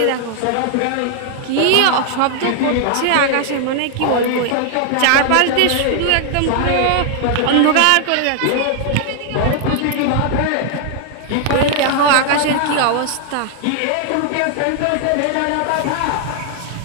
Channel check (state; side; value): different; both; correlation 0.00